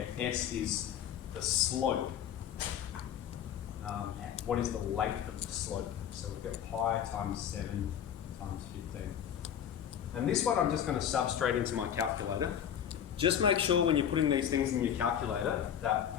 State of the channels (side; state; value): right; quieter; 9.3 dB